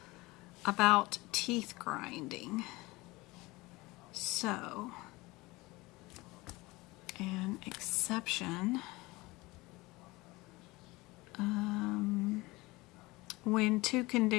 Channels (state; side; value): quieter; right; 21.7 dB